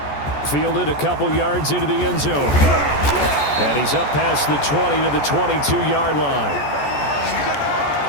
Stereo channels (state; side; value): late; right; 14 ms